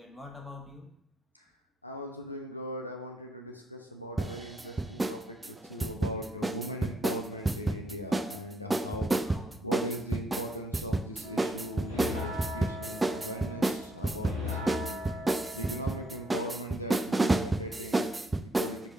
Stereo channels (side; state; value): both; normal; correlation 0.73